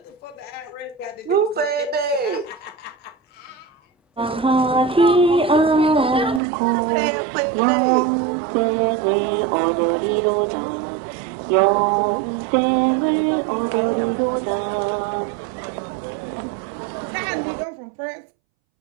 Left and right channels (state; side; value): drops out; left; at 6.4 s